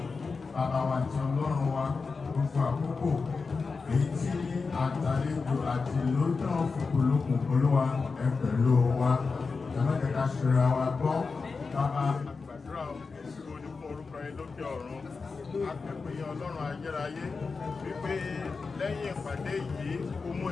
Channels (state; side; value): quieter; right; 4.5 dB